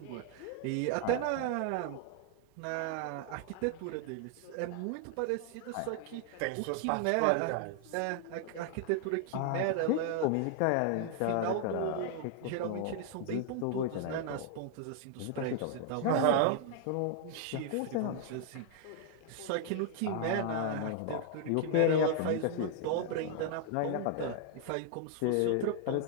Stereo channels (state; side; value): different; both; correlation 0.00